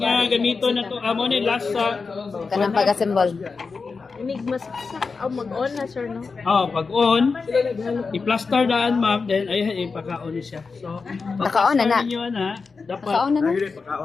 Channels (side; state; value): right; quieter; 4.7 dB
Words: gamito na to, mo ni last sa Kanang pag-assemble. Enigma sa mag-on na sir no. pag on, i-plaster daan ma'am, then ay ipaka-on siya. So, Naka-on na na. ninyo na, dapat Naka-on na na. Ayun yung